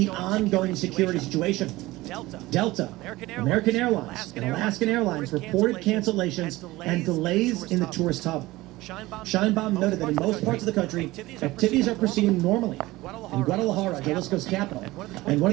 ongoing security situation. Delta, American Airlines, and Alaskan Airlines reported cancellations and delays in the tourist hub. Scheinbaum noted that in most parts of the country, activities are proceeding normally. In Guadalajara, Jalisco's capital, and one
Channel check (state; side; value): quieter; left; 19.0 dB